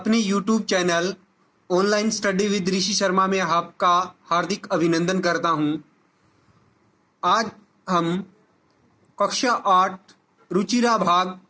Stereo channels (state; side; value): identical; both; correlation 1.00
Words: YouTube channel online study with Rishi Sharma में आपका हार्दिक अभिनंदन करता हूं। आज हम कक्षा 8 रुचिरा भाग